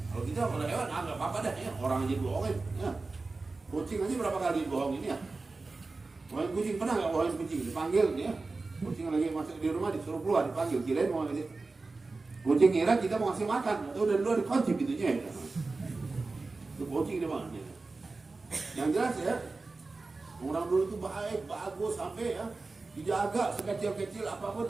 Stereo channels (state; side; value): quieter; left; 3.7 dB